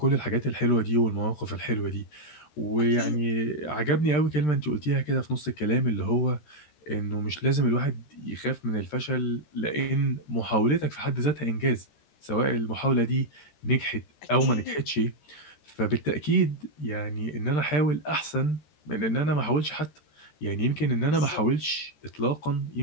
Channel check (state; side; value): late; right; 13 ms